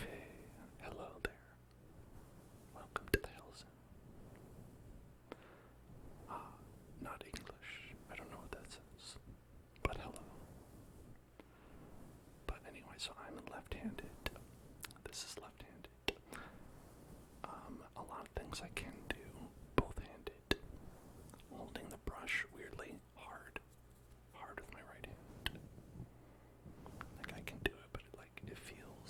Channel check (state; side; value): identical; both; correlation 1.00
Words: Hello there. Welcome to the Hills. Not English. I don't know what that says. But hello. But anyway, so I'm left-handed. This is left-handed. A lot of things I can do both-handed. Holding the brush weirdly hard with my right hand. Like I can do it, but it